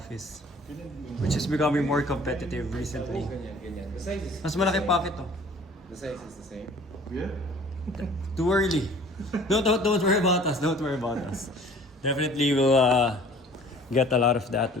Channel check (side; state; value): both; normal; correlation 0.50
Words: which is becoming more competitive recently. Mas malaki pocket to. The size is the same. Yeah? Too early. Don't worry about us. Don't worry about us. Definitely we'll get a lot of that